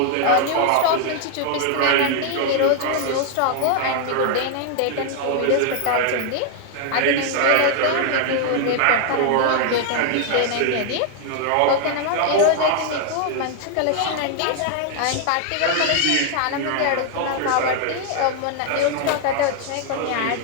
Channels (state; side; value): different; both; correlation 0.00